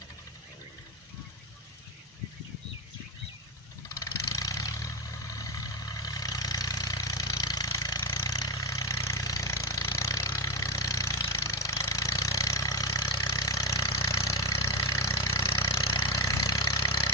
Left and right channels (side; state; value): both; normal; correlation 0.15